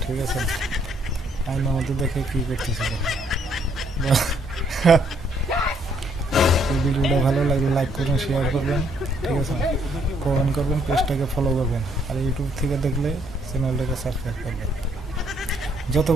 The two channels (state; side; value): normal; both; correlation 0.68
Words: ঠিক আছে? আইনের মধ্যে দেখে কী করতেছিল। ভিডিওটা ভালো লাগলে লাইক করবেন, শেয়ার করবেন, ঠিক আছে? কমেন্ট করবেন, পেজটাকে ফলো করবেন, আর ইউটিউব থেকে দেখলে চ্যানেলটাকে সাবস্ক্রাইব করবেন। যত